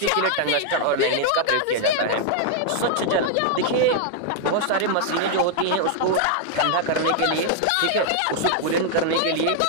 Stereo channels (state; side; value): different; both; correlation 0.00